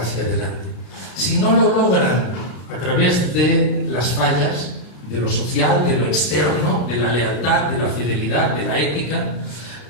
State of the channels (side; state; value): right; late; 33 ms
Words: adelante. Si no lo logran a través de las fallas, de lo social, de lo externo, de la lealtad, de la fidelidad, de la ética,